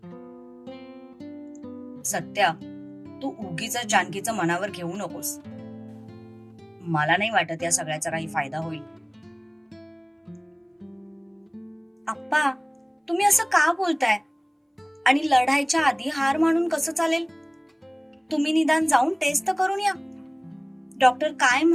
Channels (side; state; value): both; identical; correlation 1.00